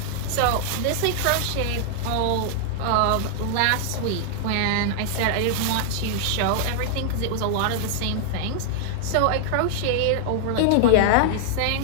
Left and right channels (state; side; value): different; both; correlation -0.01